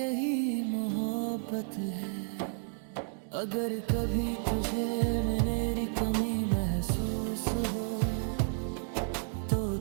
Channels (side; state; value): left; silent; 57 dB below the other